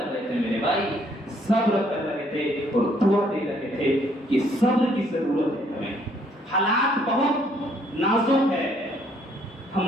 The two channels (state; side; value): normal; both; correlation 0.66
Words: رہے تھے میرے بھائی، صبر کر رہے تھے اور دعا دے رہے تھے کہ صبر کی ضرورت ہے ہمیں، حالات بہت نازک ہے،